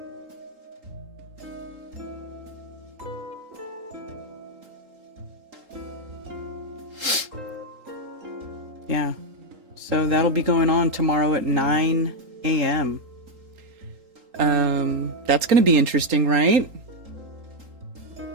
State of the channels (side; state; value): left; late; 3.8 ms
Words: Yeah. So that'll be going on tomorrow at 9 a.m. That's going to be interesting, right?